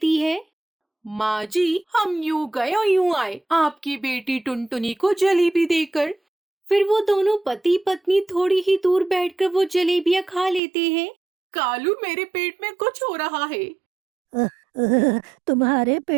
है। माँ जी, हम यूं गए और यूं आए आपकी बेटी टुनटुनी को जलेबी देकर। फिर वो दोनों पति पत्नी थोड़ी ही दूर बैठकर वो जलेबियाँ खा लेते हैं। कालू, मेरे पेट में कुछ हो रहा है। तुम्हारे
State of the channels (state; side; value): drops out; left; at 10.6 s